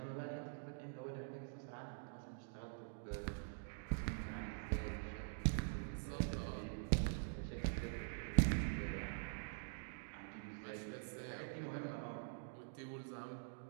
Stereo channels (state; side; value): silent; left; digital silence